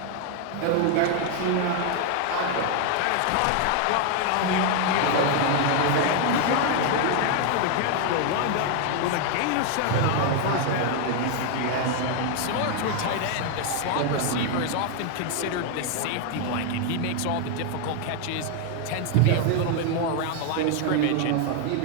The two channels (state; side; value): different; both; correlation 0.00